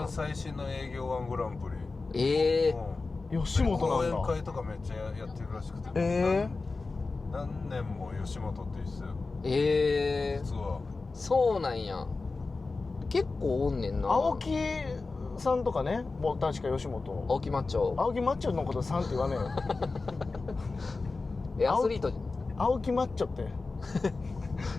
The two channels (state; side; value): quieter; right; 3.8 dB